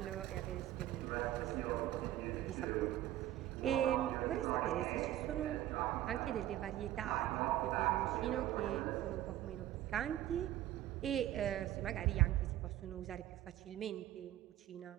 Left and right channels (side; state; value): left; quieter; 13.6 dB